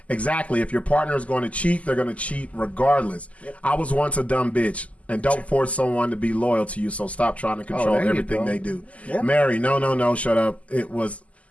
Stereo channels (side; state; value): right; late; 0.068 ms